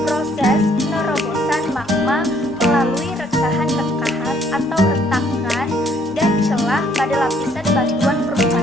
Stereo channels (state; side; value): normal; both; correlation 0.65